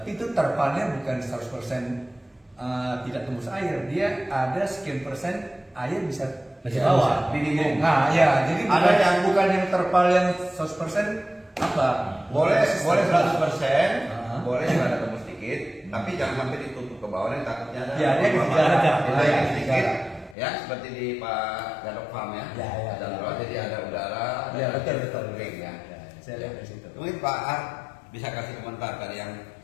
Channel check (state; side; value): drops out; right; at 20.4 s